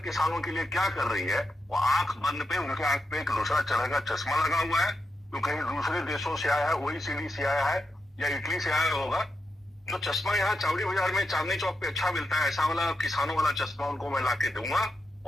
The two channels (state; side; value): normal; both; correlation 0.86